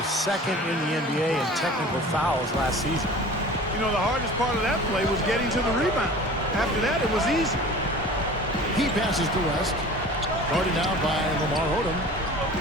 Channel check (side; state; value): both; normal; correlation 0.41